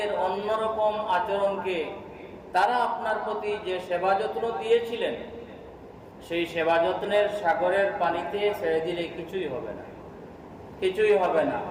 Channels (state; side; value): identical; both; correlation 1.00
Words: অন্যরকম আচরণকে তারা আপনার প্রতি যে সেবা যত্ন দিয়েছিলেন, সেই সেবা যত্নের সাগরের পানিতে ছেড়ে দিলে কিছুই হবে না, কিছুই হবে না।